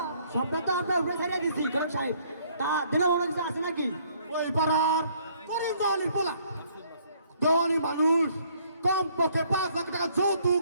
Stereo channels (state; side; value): inverted; both; correlation -0.64